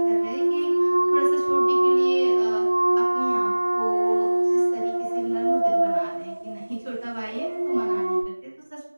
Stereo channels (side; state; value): both; inverted; correlation -1.00